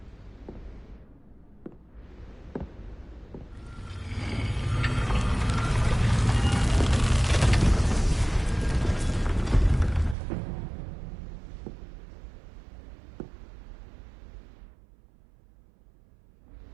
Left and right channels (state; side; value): drops out; left; at 10.2 s